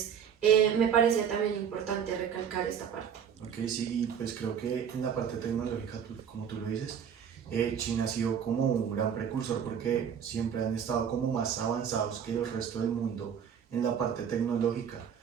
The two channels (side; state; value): left; quieter; 8.0 dB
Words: me parecía también importante recalcar esta parte. Ok, sí, y pues creo que en la parte tecnológica, como tú lo dices, China ha sido como un gran precursor porque siempre han estado como más avanzados que el resto del mundo en la parte tecnológica